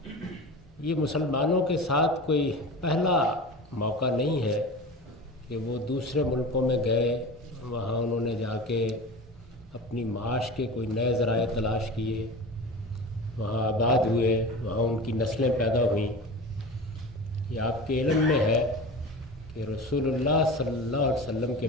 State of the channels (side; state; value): both; normal; correlation 0.32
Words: یہ مسلمانوں کے ساتھ کوئی پہلا موقع نہیں ہے کہ وہ دوسرے ملکوں میں گئے، وہاں انہوں نے جا کے اپنی معاش کے کوئی نئے ذرائع تلاش کیے، وہاں آباد ہوئے، وہاں ان کی نسلیں پیدا ہوئیں. یہ آپ کے علم میں ہے کہ رسول اللہ صلی اللہ علیہ وسلم کے